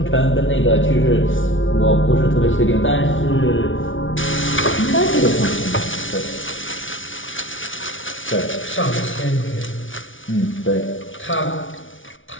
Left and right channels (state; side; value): late; right; 0.57 ms